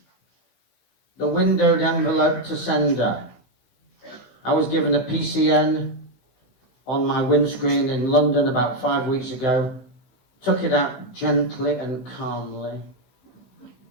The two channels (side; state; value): right; late; 16 ms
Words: the windowed envelope to sender. I was given a PCN on my windscreen in London about 5 weeks ago. Took it out gently and calmly,